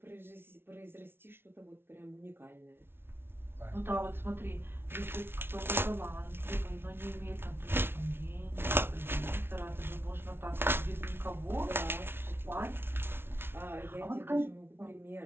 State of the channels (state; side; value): late; left; 0.11 ms